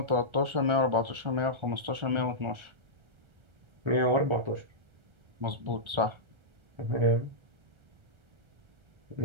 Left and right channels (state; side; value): late; left; 1.3 ms